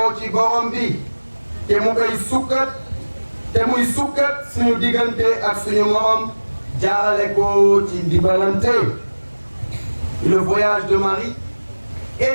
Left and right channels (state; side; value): inverted; both; correlation -1.00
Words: ci borom bi te mu koy sukkat te muy sukkat suñu diggante ak suñu morom jaarale ko ci dimbalante. Le voyage de Marie